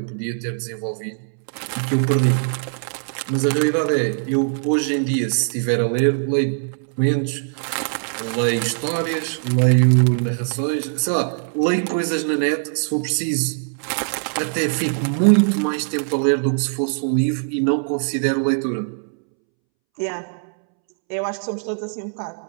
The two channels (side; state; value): left; silent; 65 dB below the other